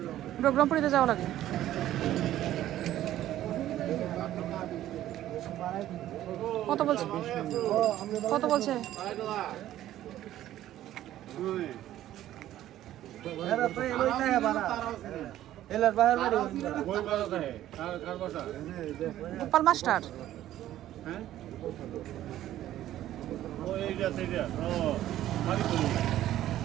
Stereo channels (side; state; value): left; quieter; 13.1 dB